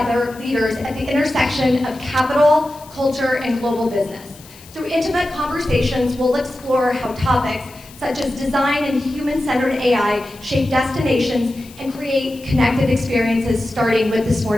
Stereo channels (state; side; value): noise; left; hiss, 22 dB below the sound